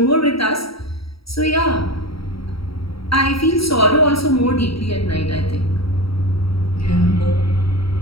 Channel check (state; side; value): late; right; 0.75 ms